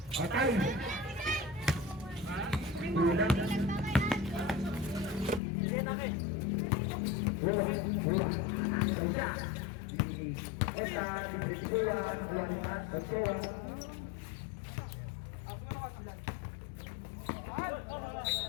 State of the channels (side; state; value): right; drops out; at 5.4 s